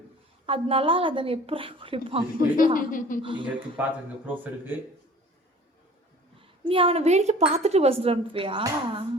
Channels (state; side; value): normal; both; correlation 0.46